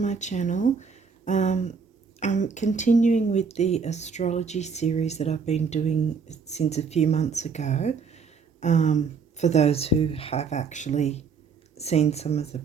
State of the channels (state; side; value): quieter; left; 5.5 dB